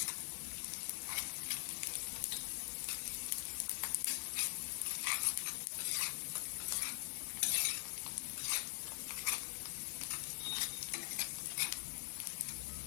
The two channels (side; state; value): right; silent; digital silence